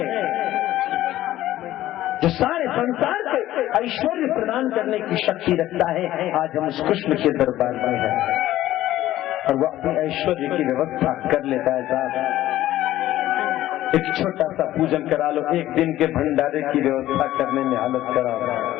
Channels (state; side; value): quieter; right; 14.4 dB